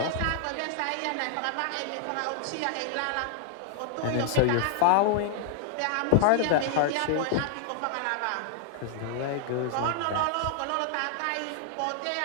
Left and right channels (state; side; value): different; both; correlation -0.01